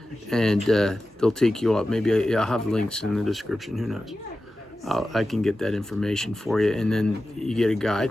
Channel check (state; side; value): normal; both; correlation 0.94